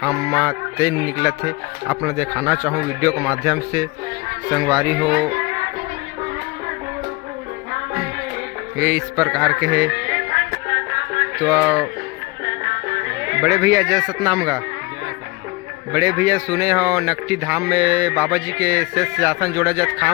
में तेल निकला थे आप लोग दिखाना चाहूँ वीडियो के माध्यम से संगवारी हो। ये इस प्रकार के है। तो बड़े भैया जय सतनाम का बड़े भैया सुने हो नकटी धाम में बाबा जी के शेष सिंहासन जोड़ा जत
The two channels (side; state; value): right; quieter; 24.4 dB